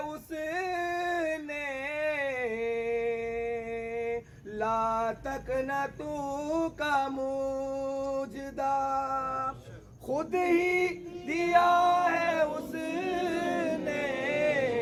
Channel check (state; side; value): identical; both; correlation 1.00